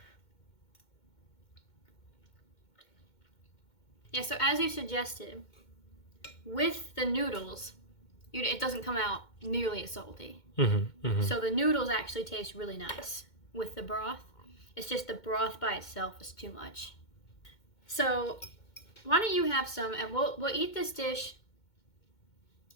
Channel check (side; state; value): right; late; 2.2 ms